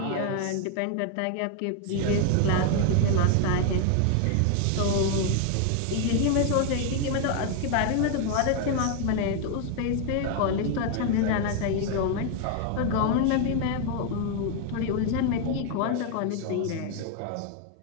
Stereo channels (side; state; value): both; different; correlation 0.00